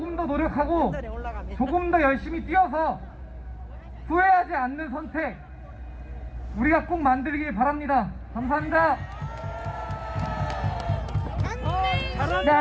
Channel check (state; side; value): identical; both; correlation 1.00